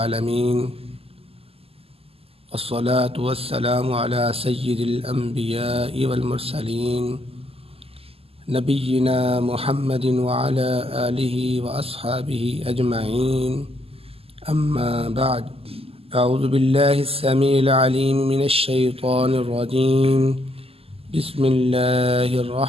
والصلاة والسلام على سيد الأنبياء والمرسلين نبينا محمد وعلى آله وأصحابه أجمعين. أما بعد، أعوذ بالله السميع العليم من الشيطان الرجيم. بسم الله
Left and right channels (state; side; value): late; left; 0.28 ms